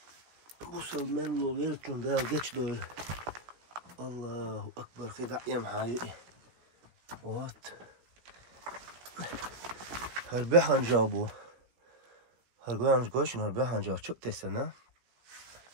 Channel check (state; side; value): late; left; 16 ms